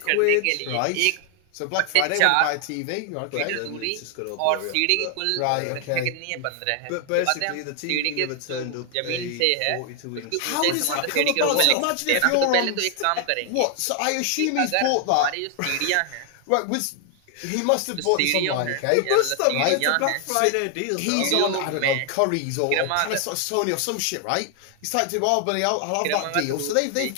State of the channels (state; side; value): different; both; correlation 0.00